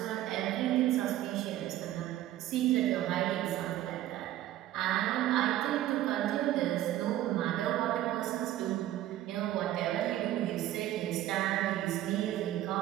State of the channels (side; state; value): left; quieter; 13.7 dB